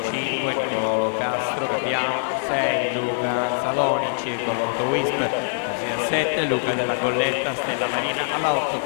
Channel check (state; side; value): silent; right; 63 dB below the other